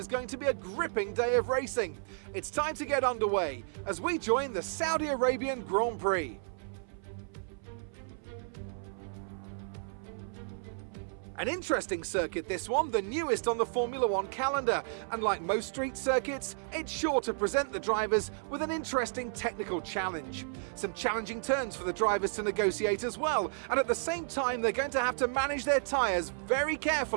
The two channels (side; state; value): left; silent; 56 dB below the other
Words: going to be a gripping day of racing. It's time to get underway as we join the Saudi Arabian Grand Prix. An interesting circuit this one, the newest on the Formula One calendar, and like most street circuits, it's sure to present the drivers with an interesting technical challenge. Some challenging turns for the drivers to negotiate as well, and at the same time they're going to have to manage their tyres very